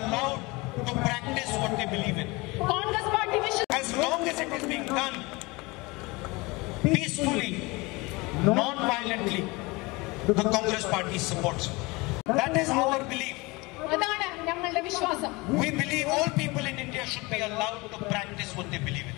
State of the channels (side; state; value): right; quieter; 24.3 dB